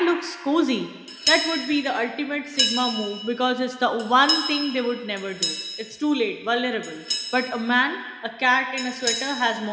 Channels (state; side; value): identical; both; correlation 1.00